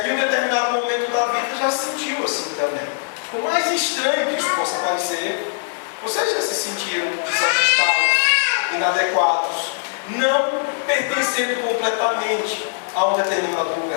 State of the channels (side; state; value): right; silent; 65 dB below the other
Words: em um determinado momento da vida, já se sentiu assim também. Por mais estranho que isso possa parecer, vocês já se sentiram desajustados, inadequados, não pertencendo completamente a um determinado